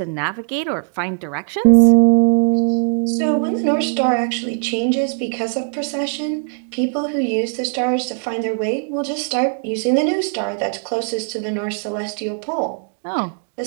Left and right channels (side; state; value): left; silent; digital silence